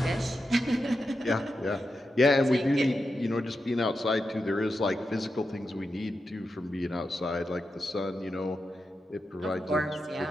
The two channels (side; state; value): both; normal; correlation 0.89